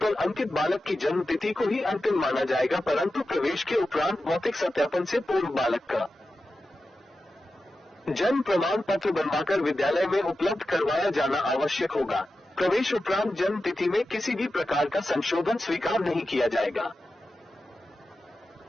अंकित बालक की जन्म तिथि को ही अंतिम माना जाएगा, परंतु प्रवेश के उपरांत भौतिक सत्यापन से पूर्व बालक का जन्म प्रमाण पत्र बनवाकर विद्यालय में उपलब्ध करवाया जाना आवश्यक होगा। प्रवेश उपरांत जन्म तिथि में किसी भी प्रकार का संशोधन स्वीकार नहीं किया जाएगा।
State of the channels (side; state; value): both; normal; correlation 0.92